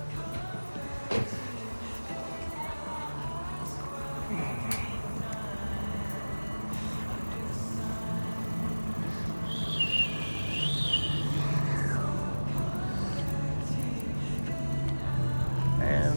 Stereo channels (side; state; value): both; inverted; correlation -1.00